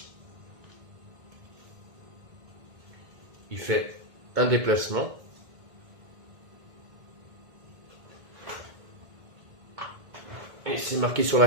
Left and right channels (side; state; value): left; late; 1.7 ms